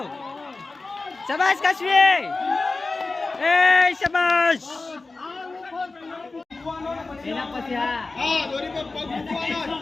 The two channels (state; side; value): quieter; right; 3.6 dB